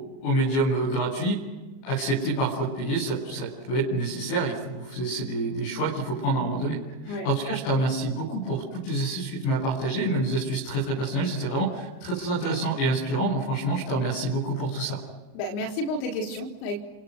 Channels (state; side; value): late; right; 39 ms